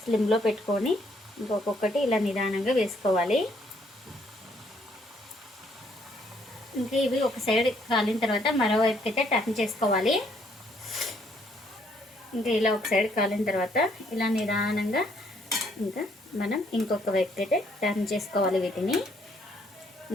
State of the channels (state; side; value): normal; both; correlation 0.68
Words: స్లిమ్లో పెట్టుకొని ఇంకొకటి ఇలా నిదానంగా వేసుకోవాలి. ఇంకా ఇవి ఒక సైడ్ కాలిన తర్వాత మరోవైపుకి అయితే టర్న్ చేసుకోవాలి. ఇంకా ఇలా ఒక సైడ్ కాలిన తర్వాత ఇలా నిదానంగా ఇంకా మనం ఇంకొక వైపుకి అయితే టర్న్ చేసుకోవాలి వీటిని.